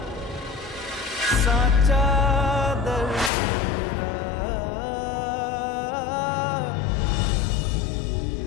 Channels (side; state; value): right; drops out; at 3.3 s